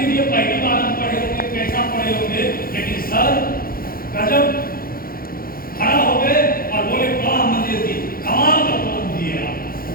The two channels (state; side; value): late; right; 0.42 ms